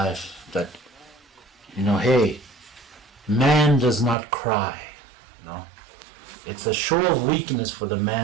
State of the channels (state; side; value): drops out; left; at 4.2 s